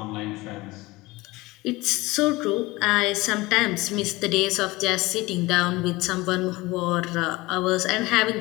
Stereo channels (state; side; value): quieter; right; 21.1 dB